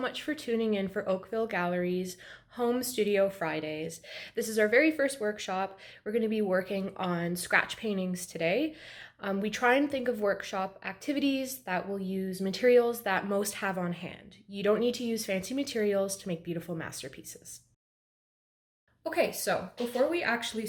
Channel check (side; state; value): both; identical; correlation 1.00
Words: for tuning in for Oakville Gallery's Home Studio Fridays. This is our very first workshop. We're going to be working on scratch paintings today. We try and think of workshop activities that will use materials that most have on hand. You don't need to use fancy materials to make beautiful masterpieces. Okay, so before we actually